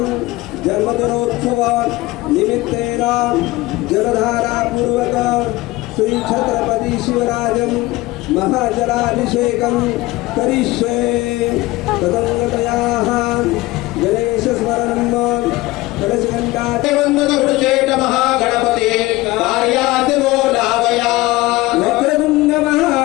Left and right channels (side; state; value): right; quieter; 19.6 dB